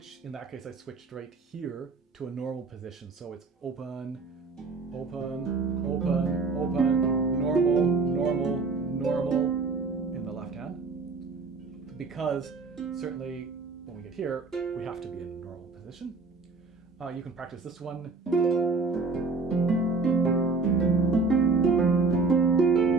in that case I switched right here to a normal position. So it's open, open, open, open, normal, normal, normal in the left hand. Because certainly when we get here, we have to be in a normal position. You can practice this one.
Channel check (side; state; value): left; quieter; 4.1 dB